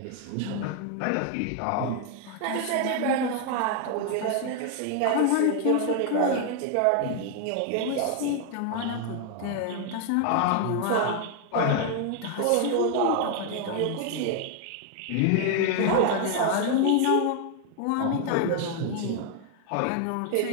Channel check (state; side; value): different; both; correlation 0.00